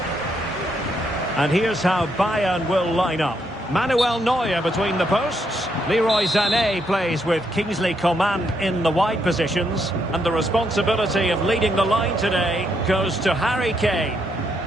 And here's how Bayern will line up. Manuel Neuer between the posts. Leroy Sané plays with Kingsley Coman in the wide positions. And the responsibility of leading the line today goes to Harry Kane.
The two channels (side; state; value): both; normal; correlation 0.76